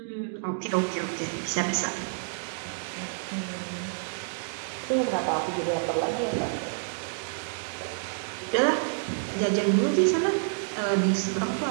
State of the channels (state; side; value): silent; left; digital silence